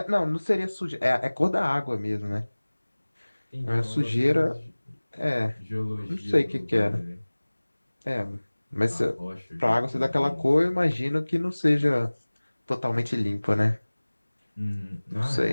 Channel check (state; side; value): inverted; both; correlation -1.00